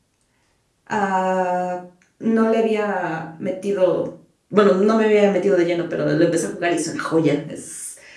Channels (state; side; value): identical; both; correlation 1.00